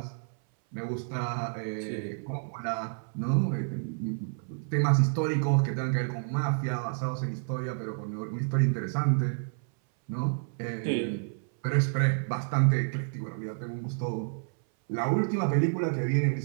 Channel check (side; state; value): left; silent; 58 dB below the other